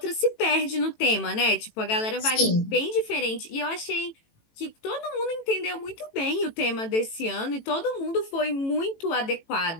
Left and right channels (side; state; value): right; late; 18 ms